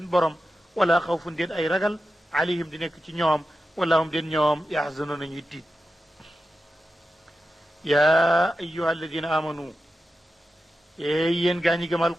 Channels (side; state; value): both; normal; correlation 0.91